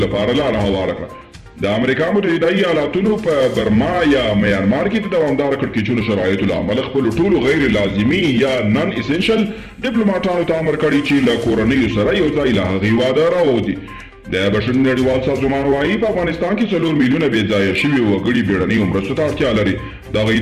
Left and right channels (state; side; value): identical; both; correlation 1.00